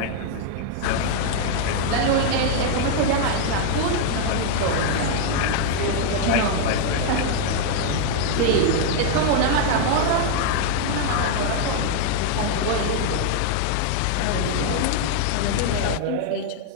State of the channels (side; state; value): both; different; correlation 0.00